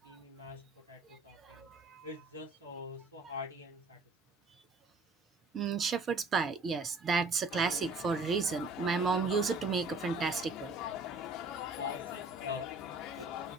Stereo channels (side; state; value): left; quieter; 3.0 dB